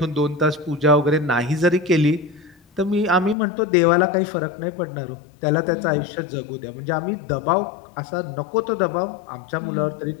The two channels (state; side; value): drops out; right; at 3.4 s